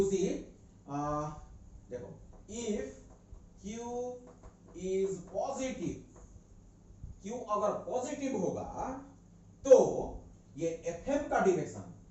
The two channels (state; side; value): identical; both; correlation 1.00